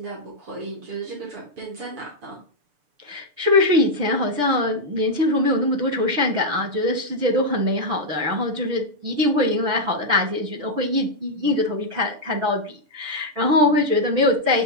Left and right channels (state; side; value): late; left; 6.8 ms